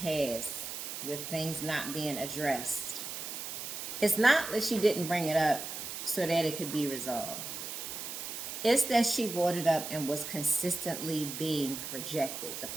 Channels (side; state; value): right; noise; hiss, 7 dB below the sound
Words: with things not being addressed, it's not that she didn't bring it up so that it could be resolved. It's that she brought it up and was consistently being rejected. The